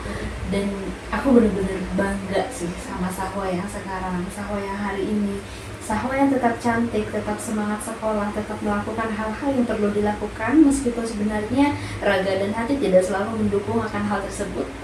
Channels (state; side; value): identical; both; correlation 1.00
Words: Dan aku bener-bener bangga sih sama Sahwa yang sekarang, Sahwa yang hari ini, Sahwa yang tetap cantik, tetap semangat sekolah, tetap melakukan hal-hal yang perlu dilakukan meskipun sebenarnya raga dan hati tidak selalu mendukung akan hal tersebut,